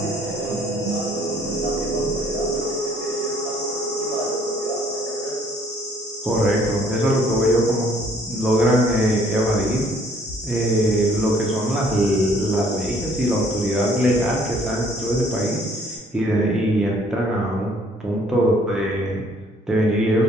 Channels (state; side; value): normal; both; correlation 0.60